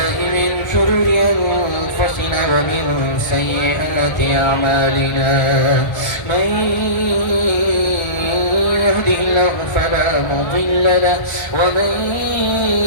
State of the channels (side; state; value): right; late; 1.4 ms